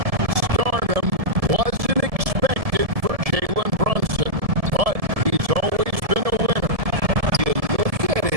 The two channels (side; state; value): left; late; 1.7 ms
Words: Stardom wasn't expected for Jalen Brunson, but he's always been a winner. You look at